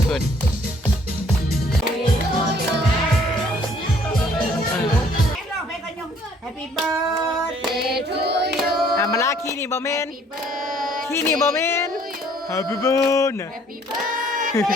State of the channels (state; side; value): normal; both; correlation 0.60